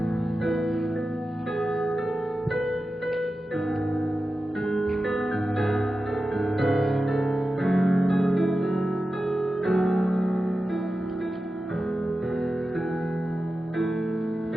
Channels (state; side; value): normal; both; correlation 0.93